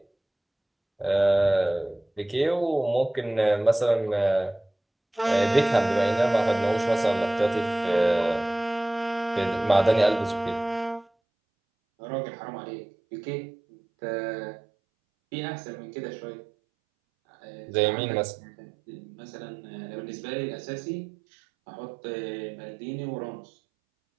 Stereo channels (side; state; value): left; drops out; at 11.1 s